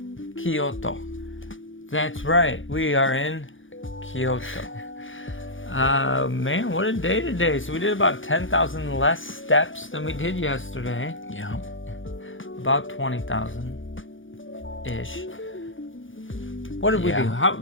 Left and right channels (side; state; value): right; late; 0.57 ms